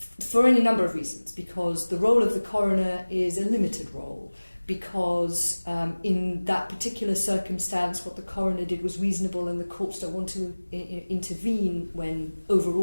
any number of reasons, because the role of the coroner is a limited role, because in that particular circumstance what the coroner did was reasonable and the courts don't want to intervene when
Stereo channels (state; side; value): inverted; both; correlation -1.00